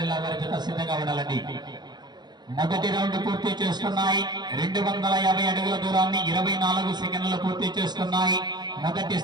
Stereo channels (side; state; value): left; late; 0.21 ms